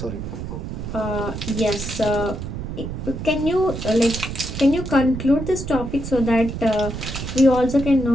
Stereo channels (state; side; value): noise; right; rumble, 7 dB below the sound